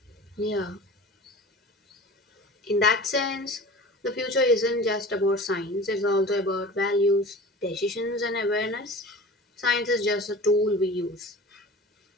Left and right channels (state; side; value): normal; both; correlation 0.38